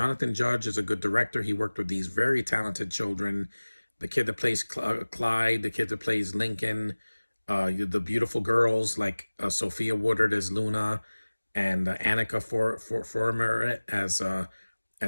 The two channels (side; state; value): both; inverted; correlation -1.00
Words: Judge is a good director. He worked with these very talented children. The kid that plays Clyde, the kid that plays Lincoln, the beautiful girls like Sophia Woodard as Luna, and Annika Former